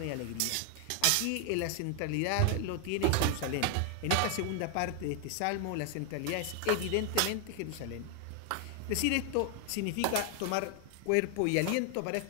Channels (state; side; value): different; both; correlation 0.00